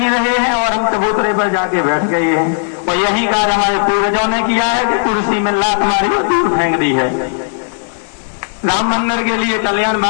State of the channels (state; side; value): silent; right; digital silence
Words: रहे हैं और हम चबूतरे पर जाके बैठ गए हैं। और यही कार्य हमारे पूर्वजों ने किया है कि कुर्सी में लात मारी और दूर फेंक दी है। राम मंदिर के लिए कल्याण